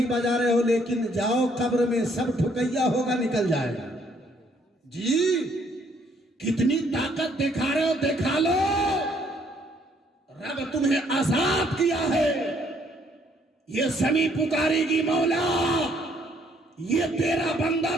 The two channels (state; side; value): normal; both; correlation 0.66